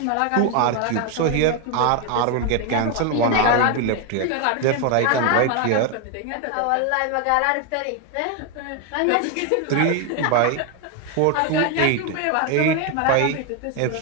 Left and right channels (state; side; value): different; both; correlation 0.01